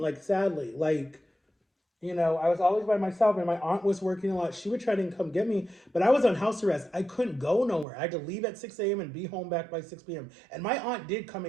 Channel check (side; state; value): left; drops out; at 7.9 s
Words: sadly, like I was always by myself, and my aunt was working a lot. She would try to come get me, but I was on house arrest. I couldn't go nowhere. I had to leave at 6 a.m. and be home back by 6 p.m. And my aunt did come